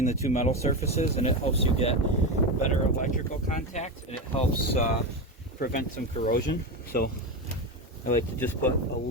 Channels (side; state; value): both; normal; correlation 0.16